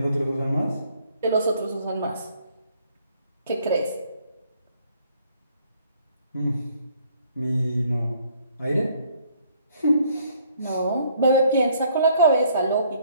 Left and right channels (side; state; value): both; inverted; correlation -0.63